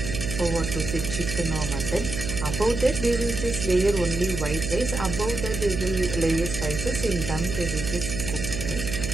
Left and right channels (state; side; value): noise; right; hum, 5 dB below the sound